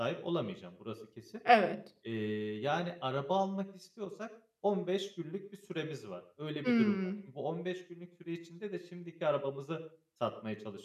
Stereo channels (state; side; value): identical; both; correlation 1.00